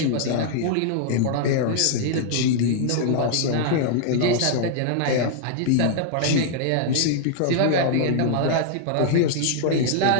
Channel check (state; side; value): different; both; correlation -0.01